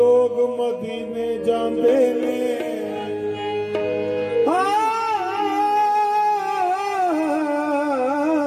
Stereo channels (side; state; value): both; identical; correlation 1.00